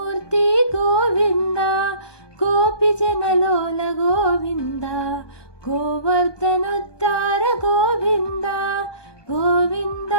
ಗೋವಿಂದ ಗೋಪಿ ಜನಲೋಲ ಗೋವಿಂದ ಗೋವರ್ಧನೋದ್ಧಾರ ಗೋವಿಂದ ಗೋವಿಂದ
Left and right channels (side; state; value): right; late; 1.2 ms